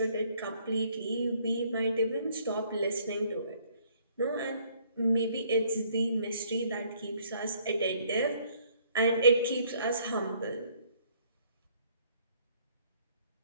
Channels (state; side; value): inverted; both; correlation -0.63